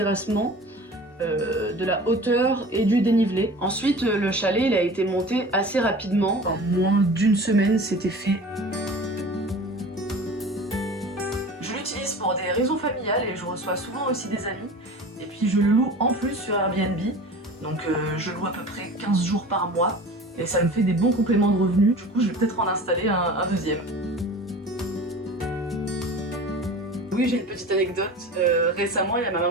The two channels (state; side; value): normal; both; correlation 0.39